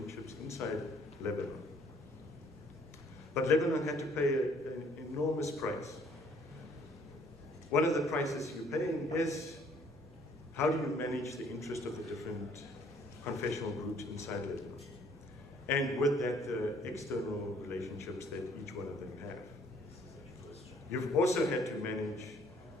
inside Lebanon. But Lebanon had to pay an enormous price. One of the prices you're paying is how do you manage the interest of the different confessional groups inside Lebanon? And with that, the external relationships that each one of them have. You've also had to manage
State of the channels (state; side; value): normal; both; correlation 0.61